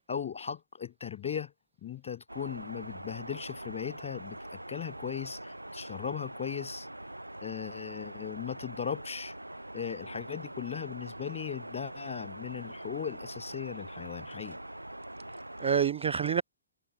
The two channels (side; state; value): both; inverted; correlation -0.35